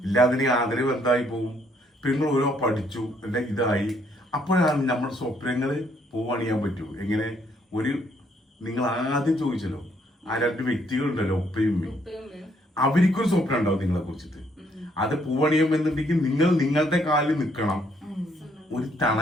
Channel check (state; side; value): normal; both; correlation 0.69